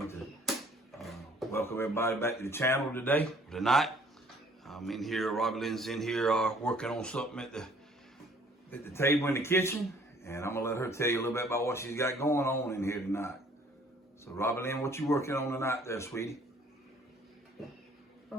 to welcome everybody back to the channel tonight. I'm in here, Robbie Lynn's in here working on something at the table in the kitchen. And I'm gonna let her tell you a little bit about what she's got going on in here tonight. So Robbie Lynn, what you working on tonight there, sweetie?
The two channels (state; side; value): normal; both; correlation 0.58